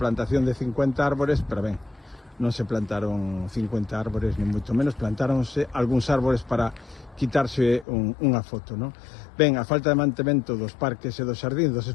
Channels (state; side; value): drops out; right; at 7.9 s